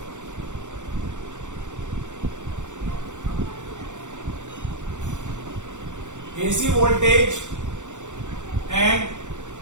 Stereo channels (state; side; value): late; left; 0.85 ms